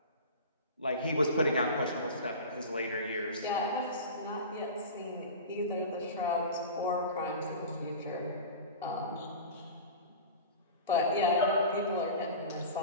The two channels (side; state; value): both; inverted; correlation -0.32